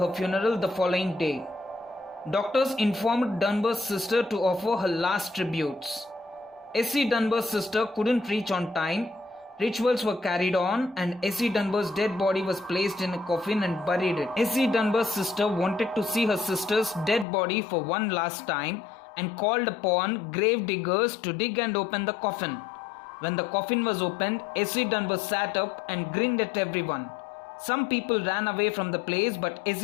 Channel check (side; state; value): right; drops out; at 17.2 s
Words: funeral the following day. Doctors informed Dunbar's sister to offer her last tributes. Essie Dunbar's sister couldn't reach on time. Rituals were carried on and Essie Dunbar's dead body was placed in a coffin and buried it. Essie Dunbar's sister wanted to see her sister's dead body for one last time and called upon grave diggers to dig and open the coffin. When the coffin was opened, Essie Dunbar sat up and grinned at everyone. Some people ran away from the place, but